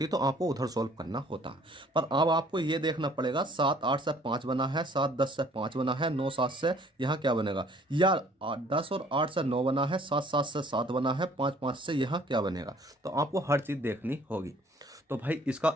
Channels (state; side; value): normal; both; correlation 0.57